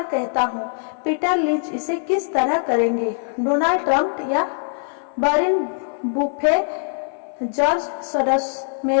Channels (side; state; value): right; silent; digital silence